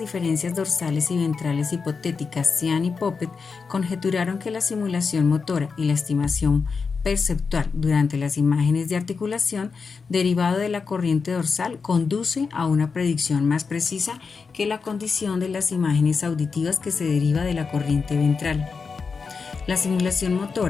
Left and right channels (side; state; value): right; quieter; 5.1 dB